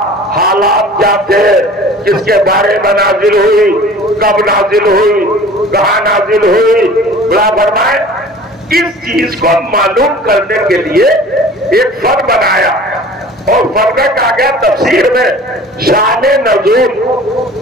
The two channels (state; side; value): normal; both; correlation 0.44